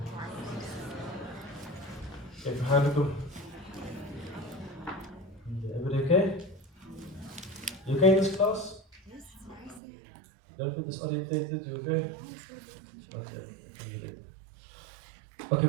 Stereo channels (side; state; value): left; drops out; at 9.8 s